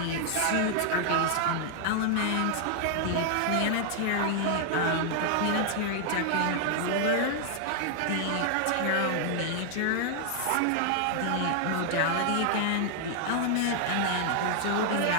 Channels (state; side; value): different; both; correlation 0.00